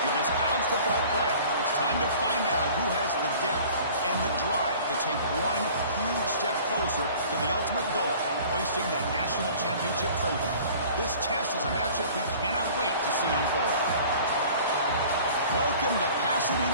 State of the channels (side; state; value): both; inverted; correlation -0.47